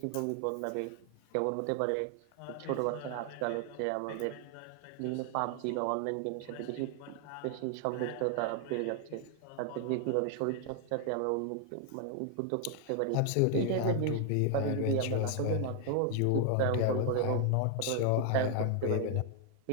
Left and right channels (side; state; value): both; different; correlation 0.00